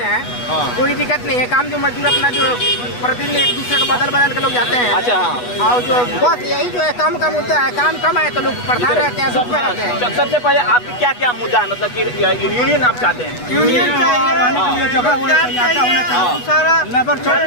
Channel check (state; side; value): late; right; 8.2 ms